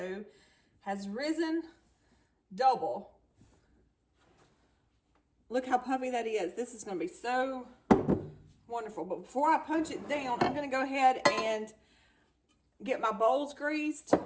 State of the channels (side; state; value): both; identical; correlation 1.00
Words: has risen double. Look how puffy that is. This is going to be so wonderful. But before I punch it down, I'm going to go ahead and get my bowls greased.